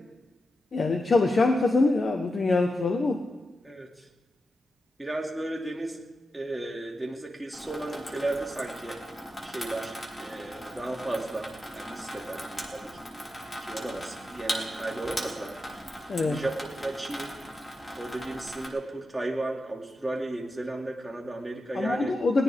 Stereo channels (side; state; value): both; normal; correlation 0.89